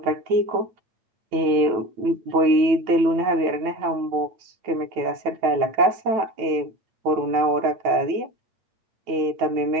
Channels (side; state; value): left; late; 9.1 ms